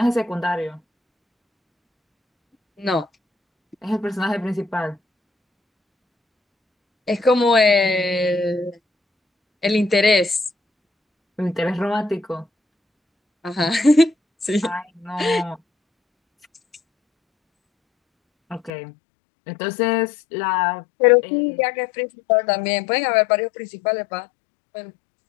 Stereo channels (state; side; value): drops out; right; at 18.7 s